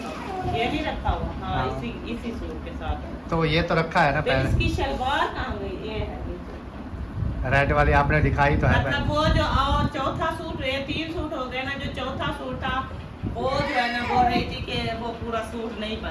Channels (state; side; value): identical; both; correlation 1.00